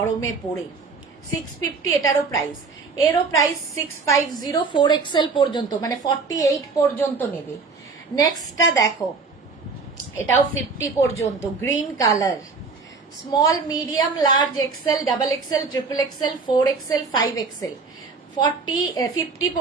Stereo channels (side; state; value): left; quieter; 4.5 dB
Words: পরে। 650 এটারও প্রাইস, এরও প্রাইস 650, 4XL পর্যন্ত, মানে 48 পর্যন্ত নেবে। নেক্সটটা দেখো, এটাও 50 পর্যন্ত, green colour. Small, medium, large, XL, double XL, triple XL, 4XL, 5XL, 50